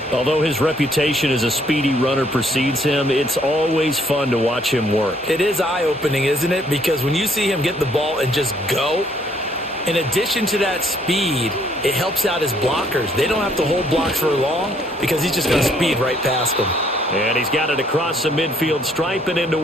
Although his reputation as a speedy runner precedes him, it's always fun to watch him work. It is eye-opening, isn't it? Because when you see him get the ball and just go, in addition to that speed, it helps out his blockers. They don't have to hold blocks for long because he's just going to speed right past them. And he's got it across the midfield stripe and into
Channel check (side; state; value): both; normal; correlation 0.66